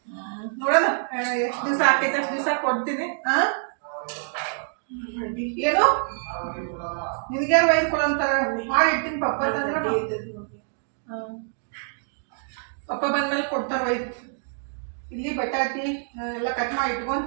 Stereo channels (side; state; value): left; silent; digital silence